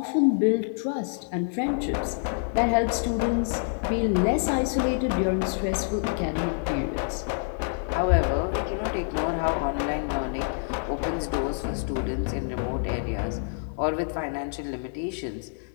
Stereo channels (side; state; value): right; silent; digital silence